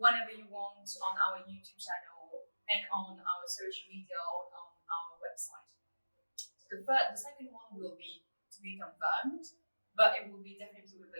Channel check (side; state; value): both; inverted; correlation -1.00